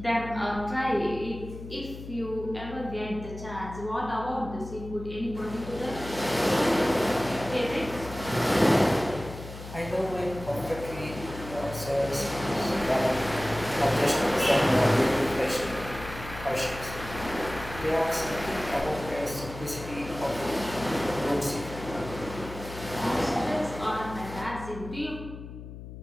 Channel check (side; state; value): left; noise; hum, 12 dB below the sound